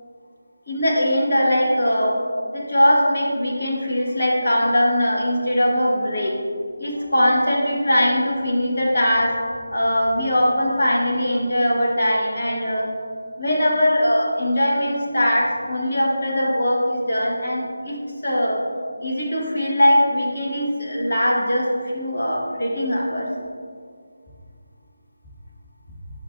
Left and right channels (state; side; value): inverted; both; correlation -0.93